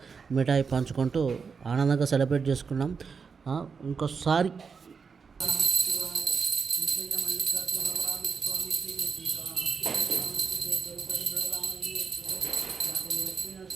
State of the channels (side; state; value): left; quieter; 5.6 dB